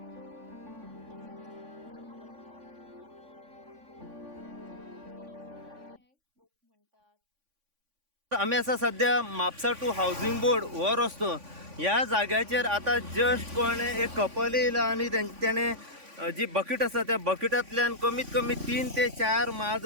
तशेंच जनावरांच्या विरोधान अशी वागणूक ही खूप दुःखद आशिल्ल्याचें लोक म्हणटात। आम्ही असा सध्या म्हापसा टू हाऊसिंग बोर्ड हो रस्तो ह्या जाग्याचेर आता जस्ट कोणे एक कपल येयला आणि त्याने जी बकेट आसा त्या बकेटांतल्यान कमीत कमी 3 ते 4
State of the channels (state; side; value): late; left; 3.5 ms